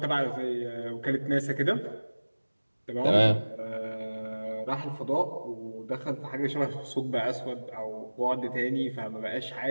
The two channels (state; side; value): inverted; both; correlation -1.00